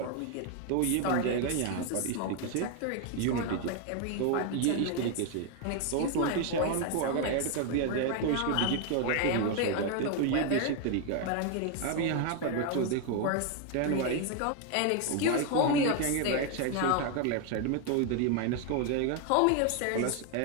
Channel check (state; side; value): different; both; correlation 0.01